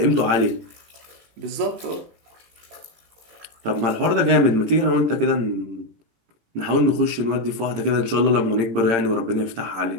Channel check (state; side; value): late; left; 18 ms